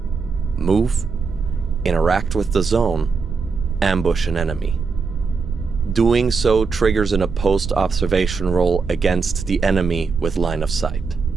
move, interact with the zone, ambush an enemy. Doing so triggers an opposed observation roll against the enemy with line of sight.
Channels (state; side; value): quieter; left; 4.9 dB